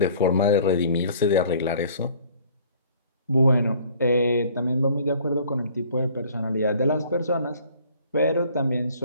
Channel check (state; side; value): inverted; both; correlation -0.54